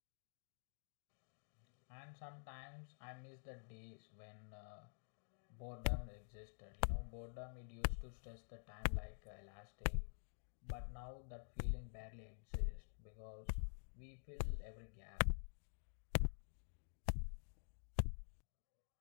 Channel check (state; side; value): silent; right; digital silence